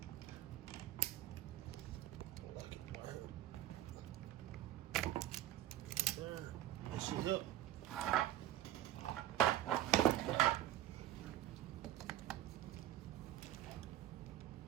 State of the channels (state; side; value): quieter; left; 13.3 dB